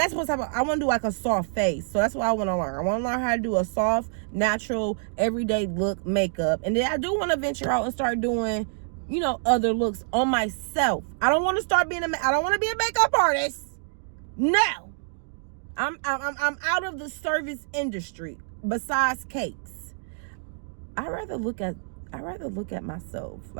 what's happening. I want to do like a soft face. So that's what I want to learn. I want to learn how to do a soft, natural, everyday look makeup. And then I do want to venture out and start doing, you know, other looks on myself. I don't want to start being I don't want to be a makeup artist. No. I'm out of the service industry. Besides cakes, I rather look at myself,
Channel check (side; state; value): left; silent; digital silence